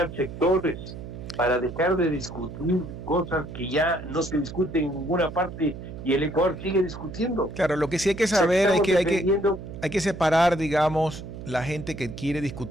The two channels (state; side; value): noise; right; hum, 11 dB below the sound